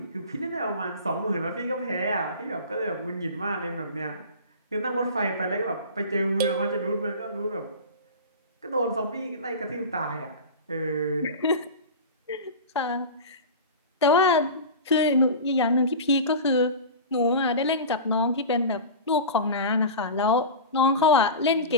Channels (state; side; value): inverted; both; correlation -0.30